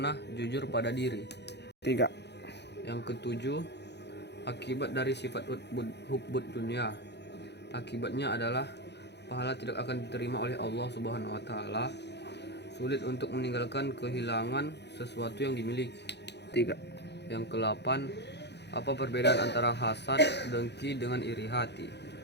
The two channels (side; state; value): right; late; 0.50 ms